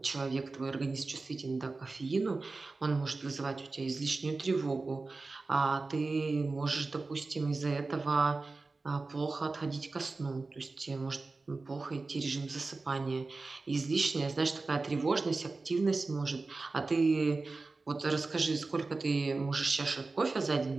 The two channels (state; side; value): quieter; left; 3.7 dB